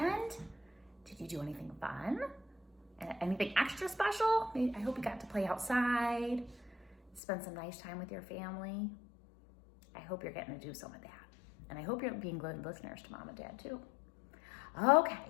Did you do anything fun? Anything extra special? I hope you got to play outside, spend some nice time with your family. I hope you're getting to do some of that. And I hope you're being good listeners to Mom and Dad too.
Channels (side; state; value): right; drops out; at 7.2 s